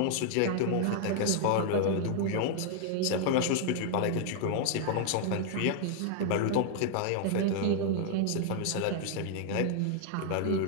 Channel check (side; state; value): both; different; correlation 0.00